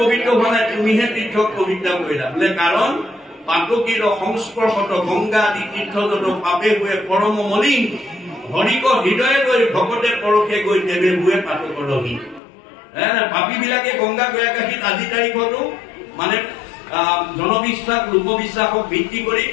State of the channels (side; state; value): right; drops out; at 12.4 s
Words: পবিত্ৰ হোৱা নাই তুমিহে তীৰ্থক পবিত্ৰ কৰিলা বোলে কাৰণ পাতকীৰ সংস্পৰ্শত গংগা আদি তীৰ্থ যত পাপে হুৱে পৰম মলিন হৰিক হৃদয়ে গৈ ভকতে পৰশে গৈ দেৱে হুৱে পাতকৰ ৰহীন পাপী বিলাকে গংগা গয়াকাশীত আজি তাৰিখতো মানে জনবিশ্বাস লোকবিশ্বাসক ভিত্তি কৰি